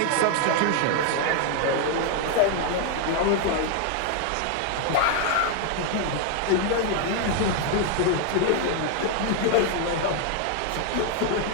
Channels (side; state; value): both; different; correlation 0.00